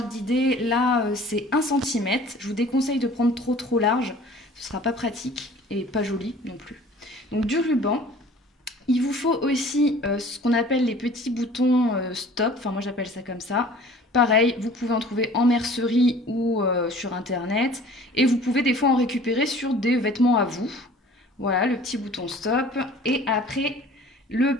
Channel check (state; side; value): normal; both; correlation 0.48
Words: d'idée, là c'est 1 cm. Je vous déconseille de prendre trop large, ce ne sera pas pratique et pas joli non plus. Donc du ruban. Il vous faut aussi ce qu'on appelle les petits boutons stop, enfin moi j'appelle ça comme ça. Pareil, vous pouvez en trouver en mercerie ou sur internet. Et vous pouvez des fois en récupérer sur des vêtements à vous. Voilà, le petit bouton stop. Et après, le